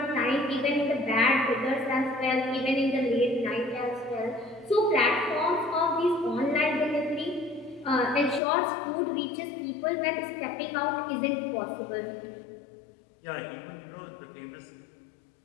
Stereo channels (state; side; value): drops out; right; at 8.4 s